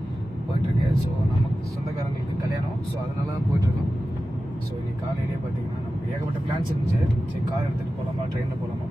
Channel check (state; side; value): normal; both; correlation 0.94